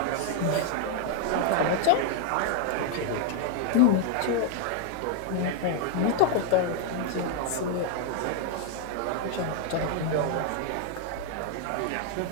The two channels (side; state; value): both; different; correlation 0.00